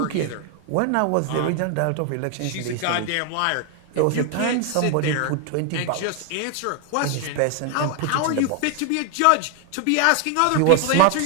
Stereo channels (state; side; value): different; both; correlation 0.00